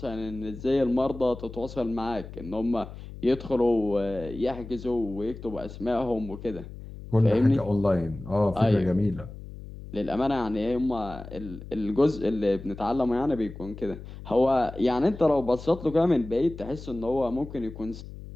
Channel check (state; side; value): noise; left; hum, 13 dB below the sound